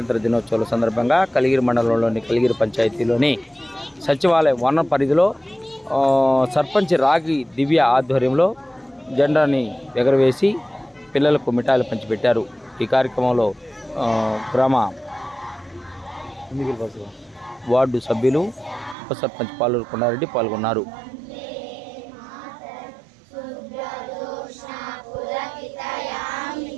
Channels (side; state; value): left; drops out; at 18.9 s